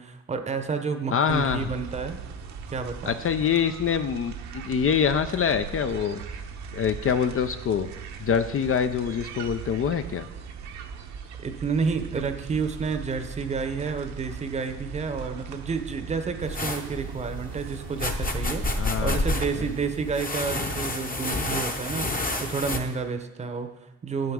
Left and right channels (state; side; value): normal; both; correlation 0.29